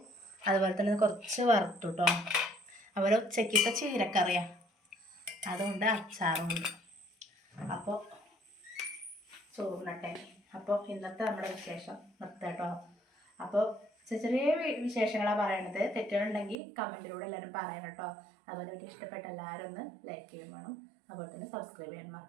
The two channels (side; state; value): left; drops out; at 16.6 s